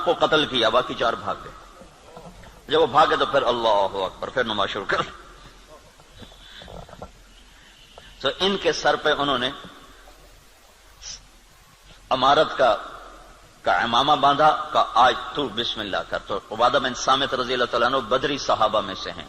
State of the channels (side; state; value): both; identical; correlation 1.00